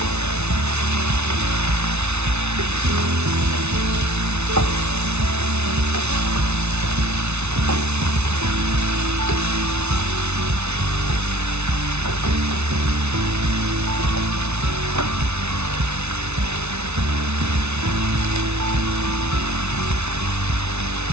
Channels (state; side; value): late; left; 0.81 ms